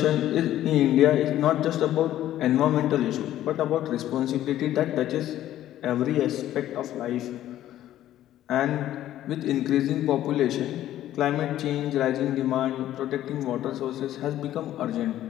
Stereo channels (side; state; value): right; quieter; 12.9 dB